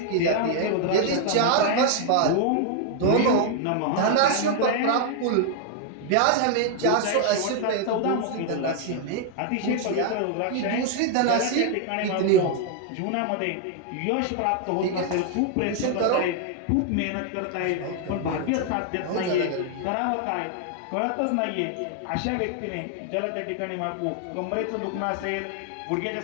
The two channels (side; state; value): both; different; correlation 0.00